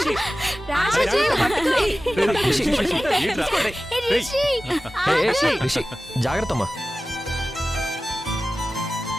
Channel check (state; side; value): normal; both; correlation 0.96